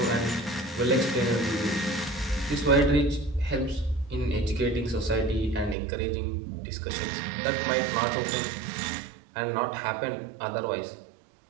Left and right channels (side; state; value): left; drops out; at 5.8 s